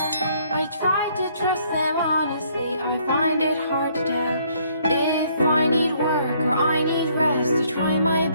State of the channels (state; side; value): inverted; both; correlation -0.66